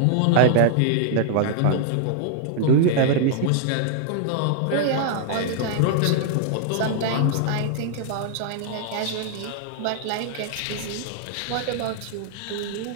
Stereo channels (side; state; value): both; different; correlation -0.01